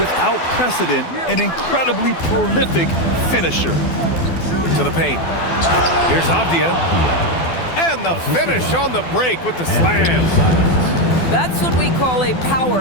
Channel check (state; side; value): late; right; 12 ms